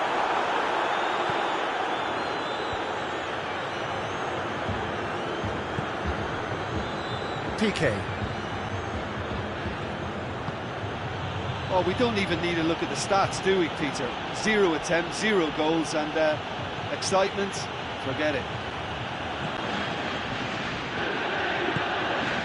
Piqué. Oh, we don't even need to look at the stats, do we, Peter? 0 attempts, 0 goals, and excitement, forget it.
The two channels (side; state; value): both; identical; correlation 1.00